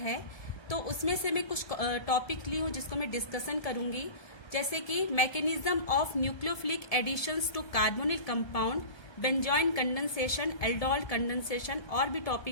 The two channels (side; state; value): right; late; 1.3 ms